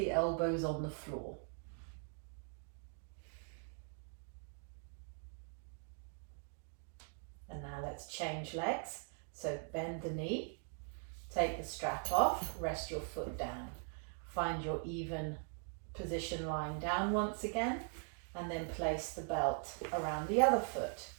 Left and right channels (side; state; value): left; silent; 50 dB below the other